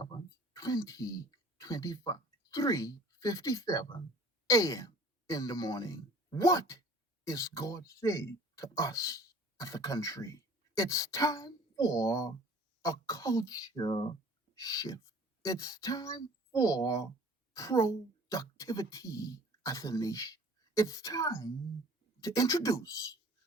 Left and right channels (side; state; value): both; normal; correlation 0.49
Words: 2025, 3:57 a.m. in the morning. What is God saying to us as a country? It's time for a culture shift. It's time for productivity as a nation. It's time to introduce